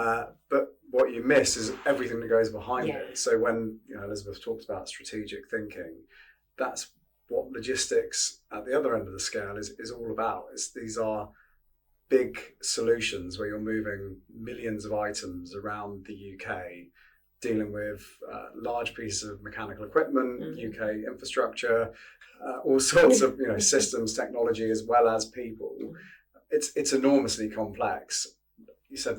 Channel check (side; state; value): both; identical; correlation 1.00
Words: But what you miss is everything that goes behind it. So when Elizabeth talked about strategic thinking, that's what logistics at the other end of the scale is all about. These are big solutions where you're moving millions of items around the UK, dealing with large pieces of mechanical equipment, UK infrastructure, all sorts of systems, technology, as well as people. It's enormously complex. You said